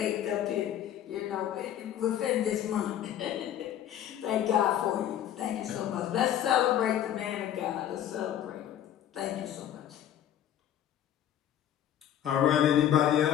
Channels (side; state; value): right; quieter; 10.9 dB